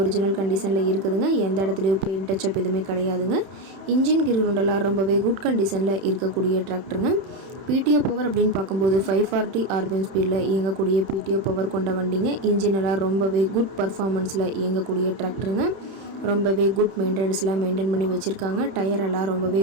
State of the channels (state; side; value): late; left; 31 ms